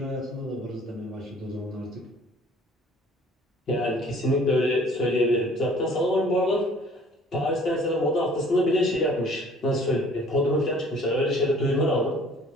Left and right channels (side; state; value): both; normal; correlation 0.54